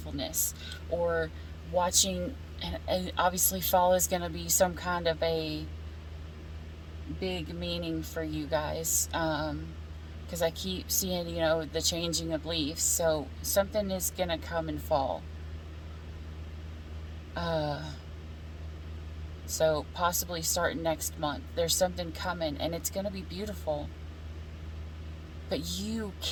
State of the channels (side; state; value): both; identical; correlation 1.00